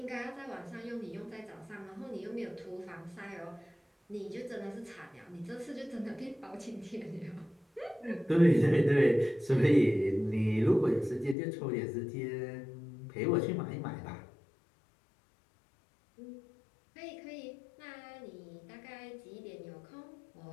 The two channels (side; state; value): right; drops out; at 11.4 s